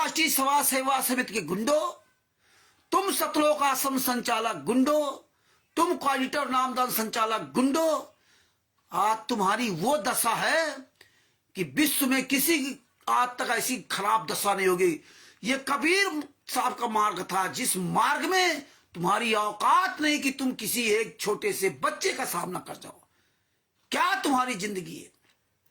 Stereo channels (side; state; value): both; identical; correlation 1.00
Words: सभा सेवा समिति के गुंडो, तुम सतलोक आश्रम संचालक गुंडो, तुम क्वालिटर नामदान संचालक गुंडो, आज तुम्हारी वो दशा है कि विश्व में किसी की आज तक ऐसी खराब दशा नहीं होगी। ये कबीर साहब का मार्ग था, जिस मार्ग में तुम्हारी औकात नहीं कि तुम किसी एक छोटे से बच्चे का सामना कर जाओ। क्या तुम्हारी जिंदगी है?